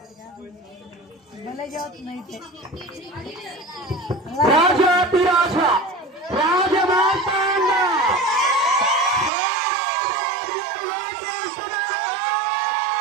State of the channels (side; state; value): left; drops out; at 9.3 s